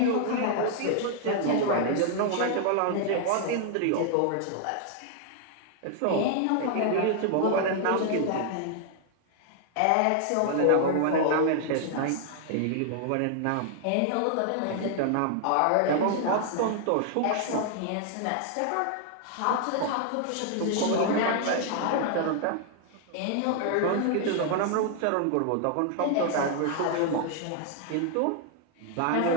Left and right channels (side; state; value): both; different; correlation 0.00